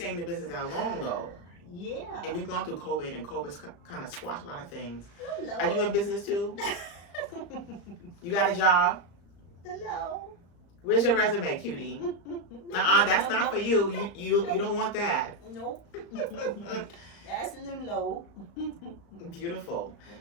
in the business that long, though. Yeah. And we've gone through COVID, and COVID's kind of squashed a lot of things. Hello. Are you in business too? You got a job? Hello. Where's your resume, cutie? That's not for you. You don't want that. Nope. That's Lulo. Beautiful.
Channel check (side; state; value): right; late; 35 ms